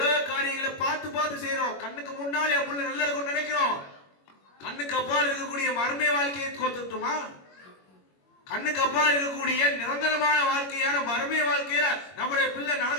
காரியங்களை பார்த்து செய்யறோம். கண்ணுக்கு முன்னாலே என் புள்ள நல்லா இருக்கும்னு நினைக்கிறோம். கண்ணுக்கு அப்பால் இருக்கக்கூடிய மர்ம வாழ்க்கையை கோத்துட்டுமா? கண்ணுக்கு அப்பால் இருக்கக்கூடிய நிரந்தரமான வாழ்க்கையான மர்ம வாழ்க்கையில நம்முடைய பிள்ளை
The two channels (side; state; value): right; late; 21 ms